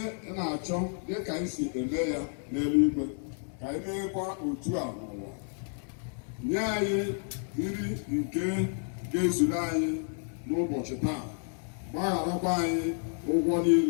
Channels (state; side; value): silent; right; 56 dB below the other